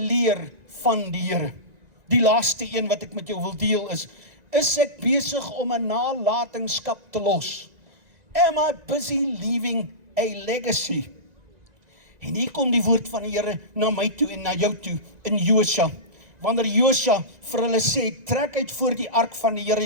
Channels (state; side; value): late; left; 1.9 ms